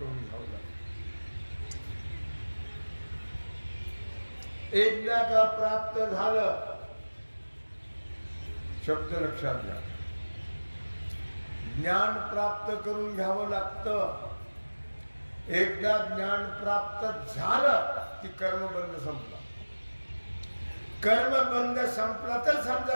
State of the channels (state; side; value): inverted; both; correlation -1.00